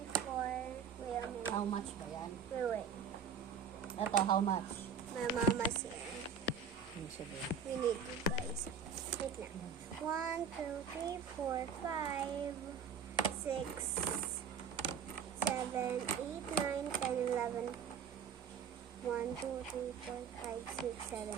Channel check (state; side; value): quieter; left; 6.5 dB